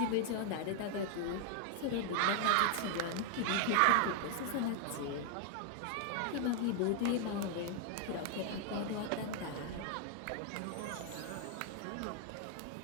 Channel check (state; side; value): different; both; correlation 0.00